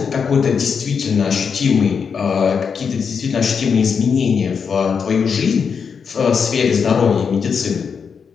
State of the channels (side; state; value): right; quieter; 6.2 dB